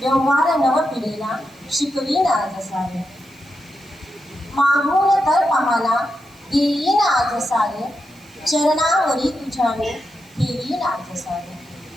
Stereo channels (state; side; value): noise; right; hiss, 30 dB below the sound